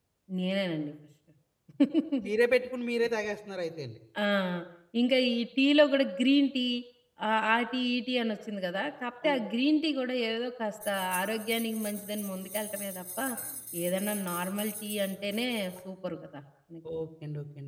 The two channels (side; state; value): both; identical; correlation 1.00